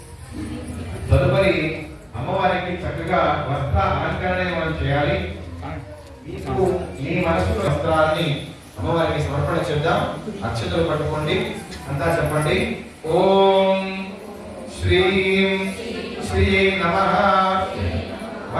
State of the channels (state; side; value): identical; both; correlation 1.00